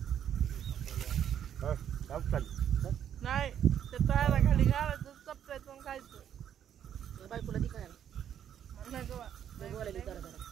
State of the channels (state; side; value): quieter; left; 9.5 dB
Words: नाही ते तळाला खाली घालायचं चपटायचं आणि खायचं त्या बायकोला ती काय म्हणलं गं बा. बोलायला करा जरा